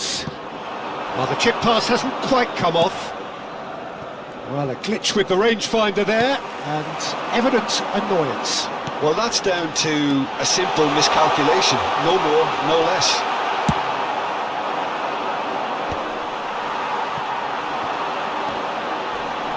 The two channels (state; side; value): identical; both; correlation 1.00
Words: Well, the chip pass hasn't quite come off. Well, a glitch with the rangefinder there, and evident annoyance. Well, that's down to a simple miscalculation. No more, no less.